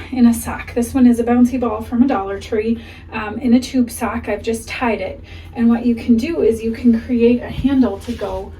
in a sock. This one is a bouncy ball from a Dollar Tree in a tube sock. I've just tied it. And what you can do is you can create a handle to go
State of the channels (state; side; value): identical; both; correlation 1.00